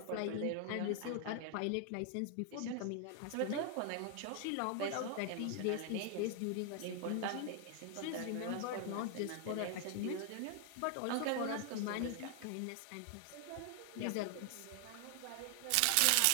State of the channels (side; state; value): both; different; correlation 0.00